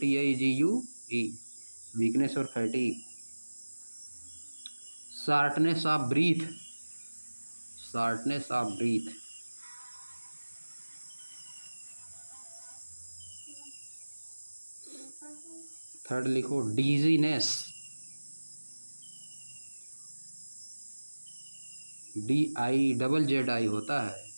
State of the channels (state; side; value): inverted; both; correlation -1.00